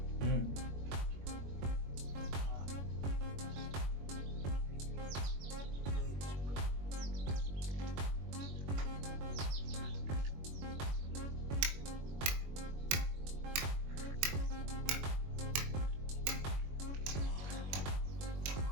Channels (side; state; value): left; late; 21 ms